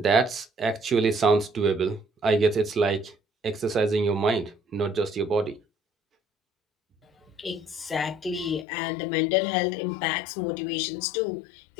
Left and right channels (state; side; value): drops out; right; at 8.7 s